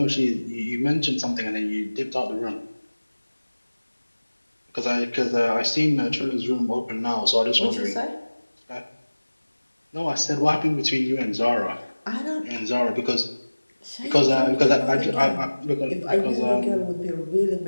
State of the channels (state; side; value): inverted; both; correlation -1.00